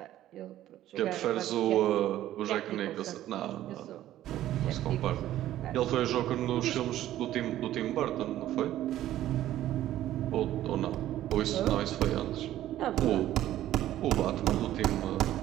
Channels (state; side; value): quieter; left; 13.3 dB